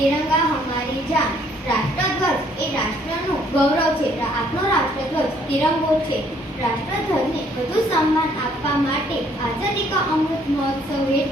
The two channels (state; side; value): normal; both; correlation 0.64